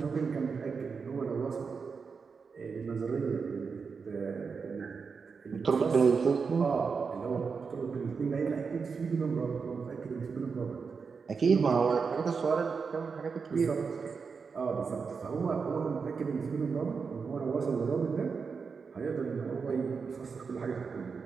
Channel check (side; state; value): left; quieter; 5.4 dB